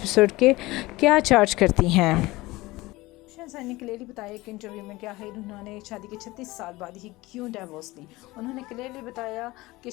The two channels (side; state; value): right; quieter; 20.1 dB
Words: के क्या चार्ज करती हैं। बुशरा अंसारी ने क्लियरली बताया एक इंटरव्यू में क्या है उन्होंने शादी के 36 साल बाद ही क्यों डाइवोर्स ली। उन्होंने क्लियरली बताया कि